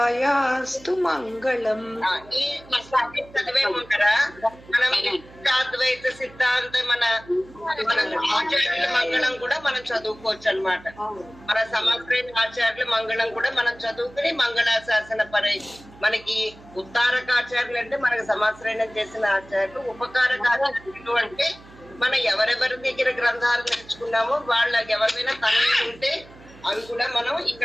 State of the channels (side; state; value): right; noise; hum, 22 dB below the sound